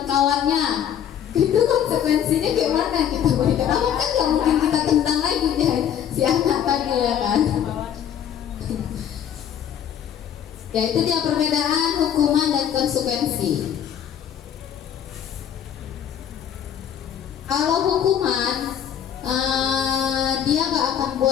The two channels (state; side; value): quieter; right; 9.4 dB